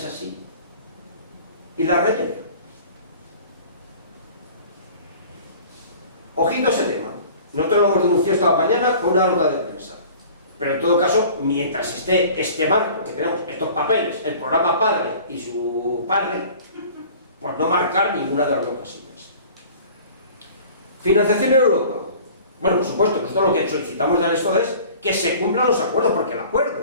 así, y la rellene? Ojito a ese tema. Nosotros lo hemos denunciado esta mañana con una nota de prensa. Pero en todo caso, mientras esté este marco, que tenemos estos papeles, el programa padre y su padre, pues no marcar ninguna de las dos casillas. Financiación en Europa. Bueno, por supuesto, nosotros lo que solicitamos del esto es que se cumplan los acuerdos, porque el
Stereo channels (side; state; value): both; inverted; correlation -0.46